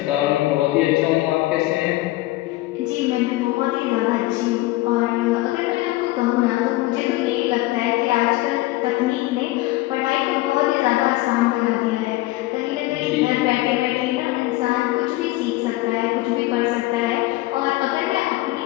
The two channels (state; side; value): quieter; right; 18.3 dB